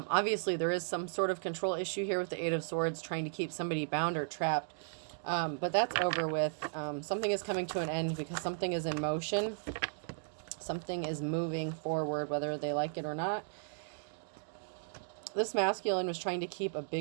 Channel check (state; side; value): silent; left; digital silence